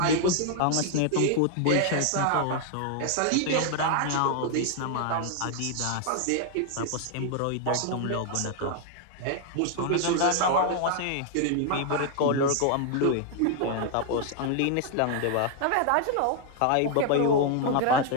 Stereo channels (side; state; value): both; different; correlation 0.00